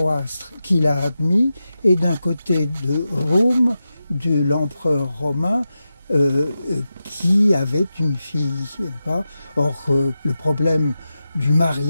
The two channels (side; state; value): both; inverted; correlation -0.92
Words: qu'il a admis et d'un côté de Rome, de l'empereur romain qui avait une fille. Or, le problème du